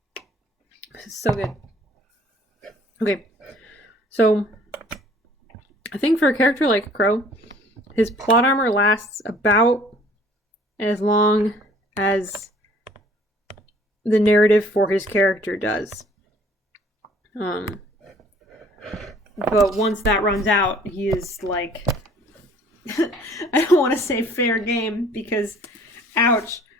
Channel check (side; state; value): both; normal; correlation 0.55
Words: It's so good. Okay. So, I think for a character like Crow, his plot armor lasts about as long as the narrative for his character does. But once that runs out, he is like... I don't want to say fair game because, ouch.